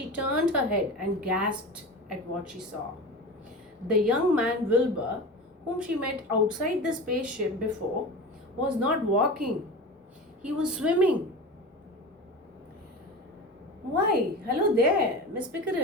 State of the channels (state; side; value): normal; both; correlation 0.30